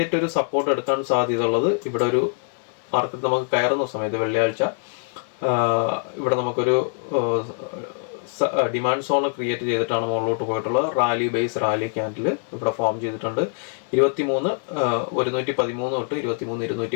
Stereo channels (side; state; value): right; silent; digital silence